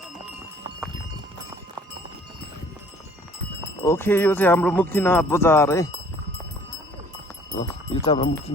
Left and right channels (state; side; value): normal; both; correlation 0.54